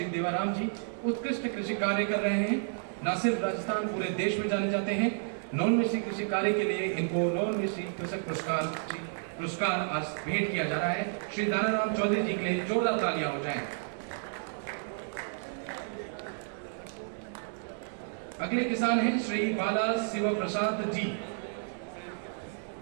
देवाराम जी उत्कृष्ट कृषि कार्य कर रहे हैं, न सिर्फ राजस्थान पूरे देश में जाने जाते हैं। नवोन्मेषी कृषि कार्य के लिए इनको नवोन्मेषी कृषक पुरस्कार आज भेंट किया जा रहा है। श्री दानाराम चौधरी जी के लिए जोरदार तालियां हो जाएं। अगले किसान हैं श्री बाला शिव प्रसाद जी,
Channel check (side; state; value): left; silent; digital silence